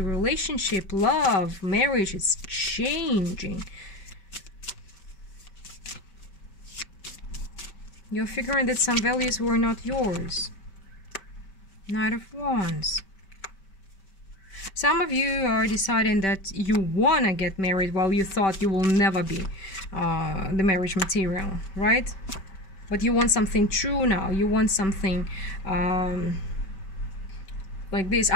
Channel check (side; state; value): right; late; 5.2 ms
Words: love, marriage is changing. You're figuring that some values were not yours. Knight of Wands. Some of you are deciding that you want to get married while you thought you will never be the marriage material, right? But you want something true now. You want something like this.